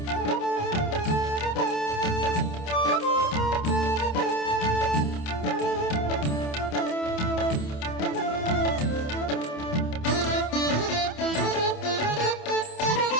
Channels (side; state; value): right; late; 27 ms